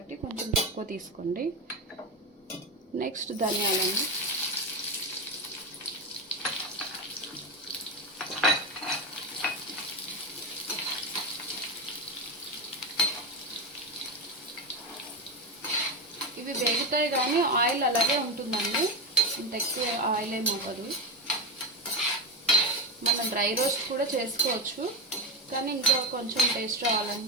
కొంచెం తక్కువ తీసుకోండి. నెక్స్ట్ ధనియాలండి. ఇవి వేగుతాయి కానీ ఆయిల్ అలాగే ఉంటుందండి, ఇంత ఎక్కువ ఆయిల్ ఏమి అవ్వదు. మనం డ్రై రోస్ట్ కూడా చేసుకోవచ్చు, కానీ ఇంకా కొంచెం టేస్ట్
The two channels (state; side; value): normal; both; correlation 0.16